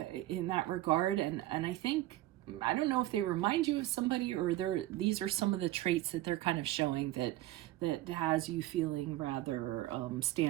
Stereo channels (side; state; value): left; quieter; 15.6 dB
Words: in that regard. And I think, I don't know if they remind you of somebody or these are some of the traits that they're kind of showing that has you feeling rather